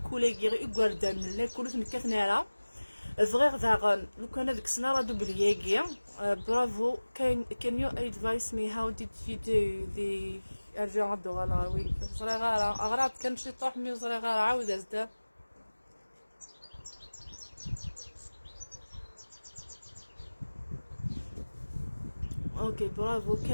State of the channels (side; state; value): both; inverted; correlation -1.00